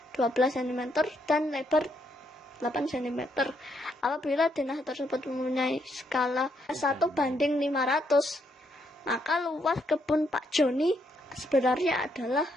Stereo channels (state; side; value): normal; both; correlation 0.75